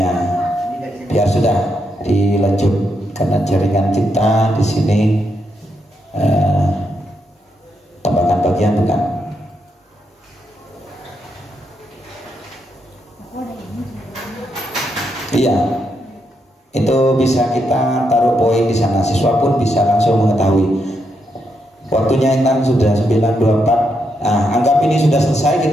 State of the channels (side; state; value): both; normal; correlation 0.80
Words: Biar sudah dilanjut. Karena jaringan kita di sini tambahkan bagian bukan. Iya, itu bisa kita taruh poin di sana. Siswa pun bisa langsung mengetahui. Waktunya Intan sudah 9.24. Nah, anggap ini sudah selesai,